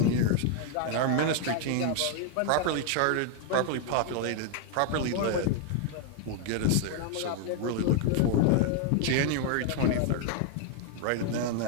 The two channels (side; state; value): both; different; correlation 0.00